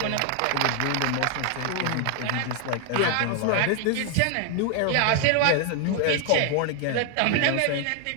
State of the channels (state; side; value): different; both; correlation 0.00